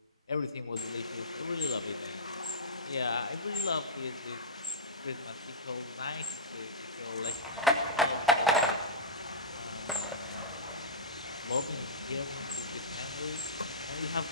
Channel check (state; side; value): normal; both; correlation -0.14